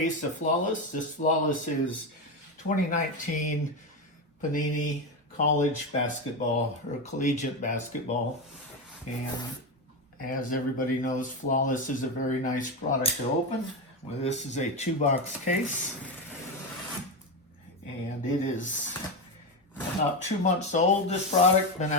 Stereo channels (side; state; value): both; normal; correlation 0.14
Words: of Flawless. This Flawless is 2019 Panini College basketball or collegiate basketball. And as everybody knows, Flawless is a very nice product to open. Well, this is a 2-box case, and it is about 2 months old. This product been